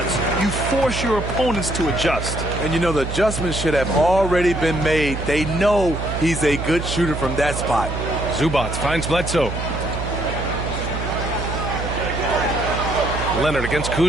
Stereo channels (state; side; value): noise; right; hum, 5 dB below the sound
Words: you force your opponents to adjust. And you know, the adjustments should have already been made. They know he's a good shooter from that spot. Zubac finds Bledsoe. Leonard against